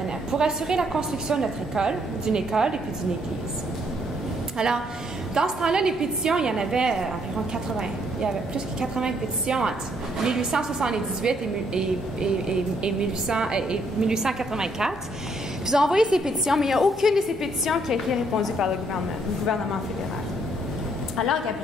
Pour assurer la construction de notre école, d'une école et puis d'une église. Alors, dans ce temps-là, les pétitions, il y en avait environ 80. Il y avait plus que 80 pétitions entre 1878 et 1884. Puis ils ont envoyé ces pétitions, mais il n'y a aucune de ces pétitions qui a été répondue par le gouvernement fédéral. Alors,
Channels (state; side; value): normal; both; correlation 0.70